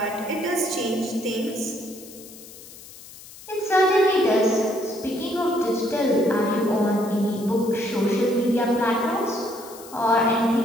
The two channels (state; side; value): noise; left; hiss, 18 dB below the sound